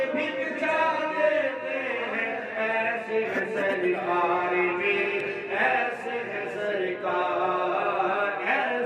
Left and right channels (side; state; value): both; identical; correlation 1.00